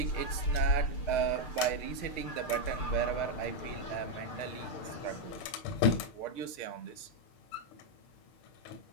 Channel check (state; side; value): late; right; 6.5 ms